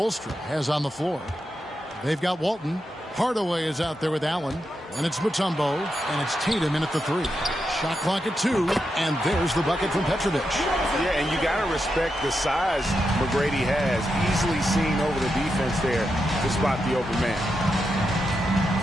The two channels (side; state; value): both; normal; correlation 0.86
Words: has on the floor. They've got Walton. Hardaway is out there with Allen. And it's Mutombo. And it's Tatum in at the 3. Shot clock at 2, and there's the bucket from Petrovic. Yeah, and you got to respect the size McGrady has. Easily seen over the defense there to spot the open man.